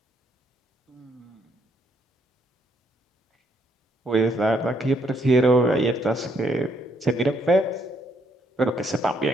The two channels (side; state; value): both; normal; correlation 0.72